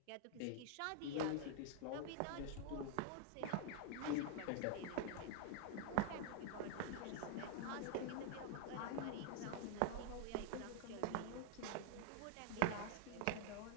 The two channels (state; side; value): different; both; correlation 0.00